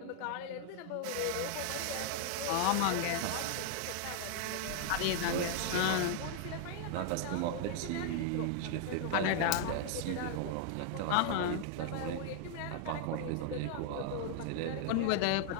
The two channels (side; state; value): both; different; correlation 0.00